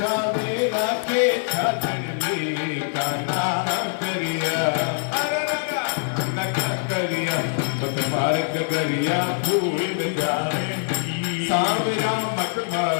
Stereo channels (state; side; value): silent; right; 56 dB below the other